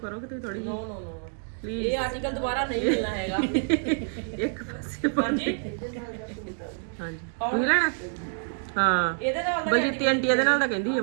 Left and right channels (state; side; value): silent; left; 60 dB below the other